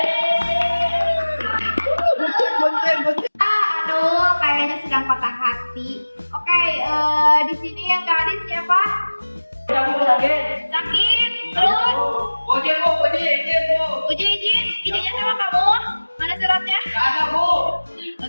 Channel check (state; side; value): inverted; both; correlation -1.00